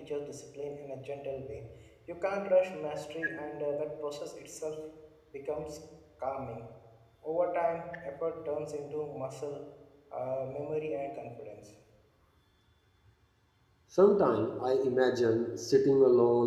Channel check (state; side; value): identical; both; correlation 1.00